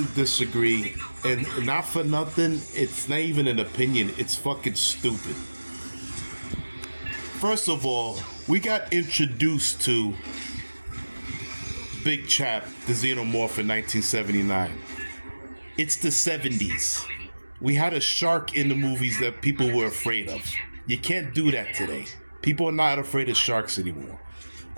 disagree. And not for nothing, it's not even an opinion. It's fucking stupid. First of all, we got introduced to Big Chap, the Xenomorph, in 1979. It's the 70s. We had a shark in the movies that people were afraid of. You can't do that today. People are not afraid of sharks anymore.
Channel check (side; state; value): both; inverted; correlation -1.00